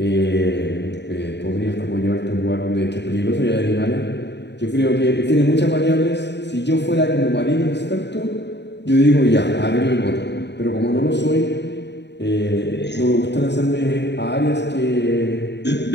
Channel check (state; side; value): late; right; 0.50 ms